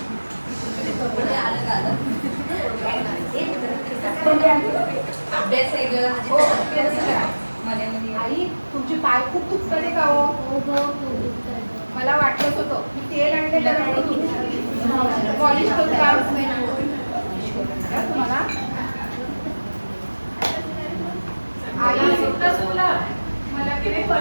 आई तुमची पाय खूप दुखतात आहे का हो? मला वाटलंच होतं. मी तेल आणलेलं पॉलिश करू का तुम्हाला? आई मला तिने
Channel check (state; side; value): inverted; both; correlation -1.00